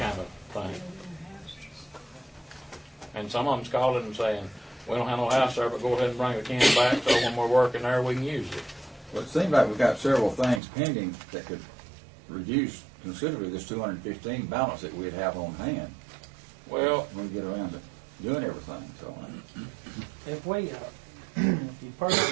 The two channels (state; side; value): drops out; left; at 10.6 s